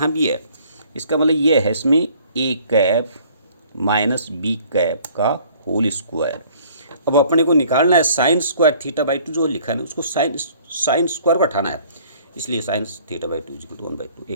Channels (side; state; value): both; inverted; correlation -0.56